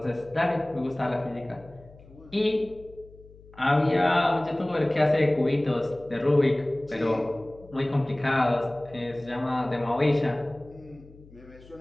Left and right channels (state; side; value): noise; left; hum, 23 dB below the sound